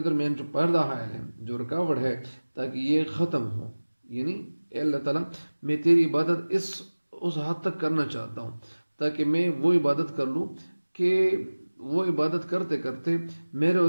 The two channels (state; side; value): inverted; both; correlation -1.00